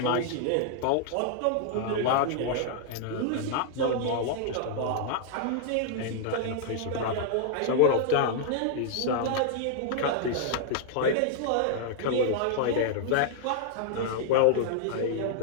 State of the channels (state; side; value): different; both; correlation -0.01